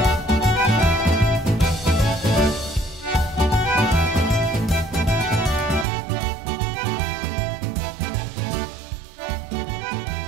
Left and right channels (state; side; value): drops out; left; at 5.9 s